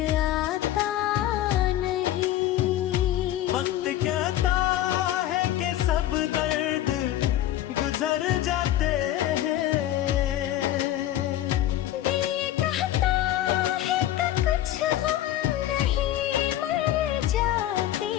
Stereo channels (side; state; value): right; quieter; 13.2 dB